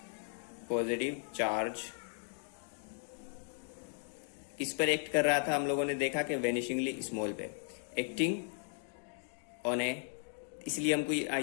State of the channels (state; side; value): silent; right; 54 dB below the other